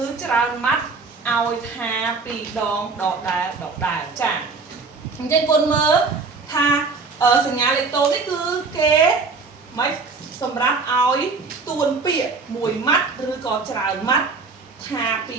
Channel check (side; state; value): left; quieter; 4.4 dB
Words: ច្រើនម៉ាត់ឲ្យថាពីរដងដដែលចាអញ្ចឹងគុណមើលថាសញ្ញាលេខតូនេះគឺគេមិនសម្រាប់ឲ្យទួនពាក្យមួយម៉ាត់ឬក៏ច្រើនម៉ាត់ថាពី